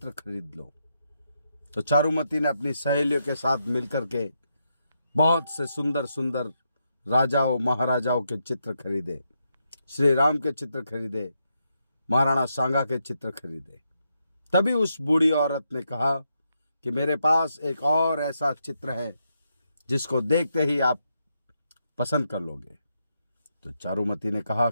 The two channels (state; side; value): inverted; both; correlation -0.82